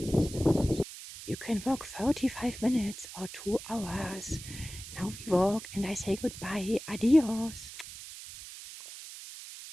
You can walk 45 minutes or 2 hours. Now we walk and I say goodbye, adios.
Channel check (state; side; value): noise; right; hiss, 13 dB below the sound